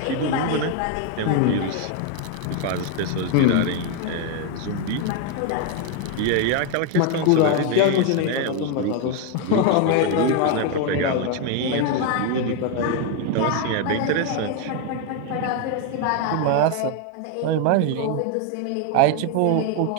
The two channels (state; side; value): different; both; correlation 0.01